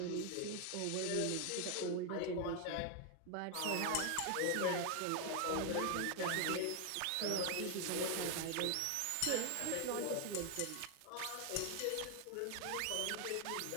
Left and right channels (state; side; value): different; both; correlation 0.01